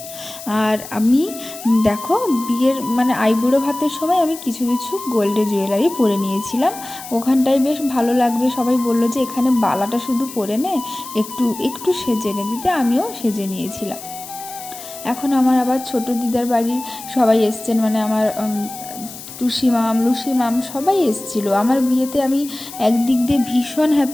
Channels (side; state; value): left; noise; hiss, 13 dB below the sound